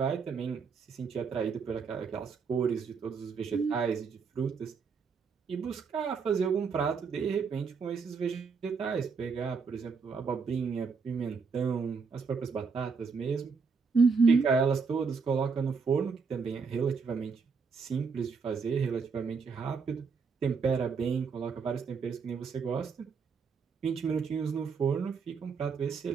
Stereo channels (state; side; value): quieter; left; 5.4 dB